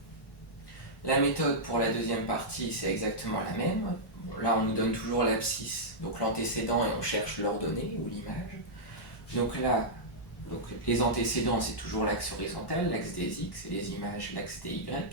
La méthode pour la deuxième partie, c'est exactement la même. Bon, là, on nous donne toujours l'abscisse, donc l'antécédent, et on cherche l'ordonnée, ou l'image. Donc là, les antécédents, c'est toujours l'axe horizontal, l'axe des x, et les images, l'axe des y.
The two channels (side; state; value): both; normal; correlation -0.10